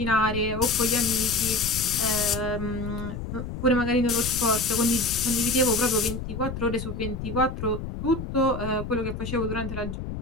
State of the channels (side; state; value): left; noise; rumble, 7 dB below the sound